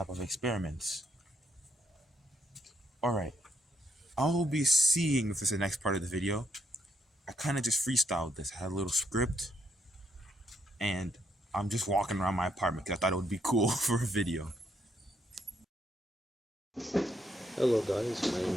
of experiments. Alright. I'll be seeing if this is the next part of the video. I kind of just freestyled this. I had a little script, and I'm just walking around my apartment because I thought it would be cool for a video. Hello guys, my name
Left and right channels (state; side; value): normal; both; correlation 0.74